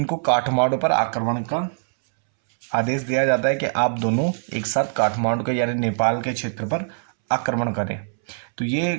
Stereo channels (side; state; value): left; silent; 64 dB below the other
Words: काठमांडू पर आक्रमण का आदेश दिया जाता है कि आप दोनों एक साथ काठमांडू के यानी नेपाल के क्षेत्र पर आक्रमण करें। तो ये